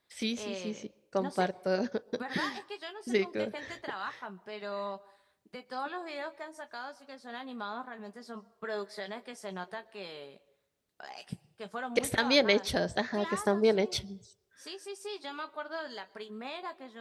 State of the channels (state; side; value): identical; both; correlation 1.00